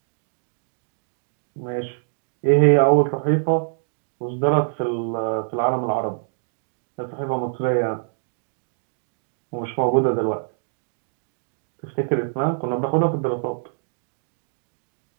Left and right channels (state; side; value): silent; left; digital silence